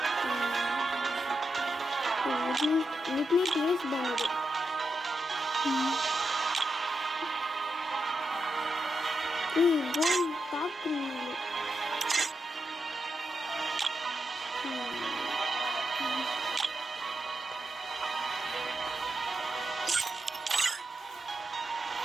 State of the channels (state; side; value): normal; both; correlation 0.86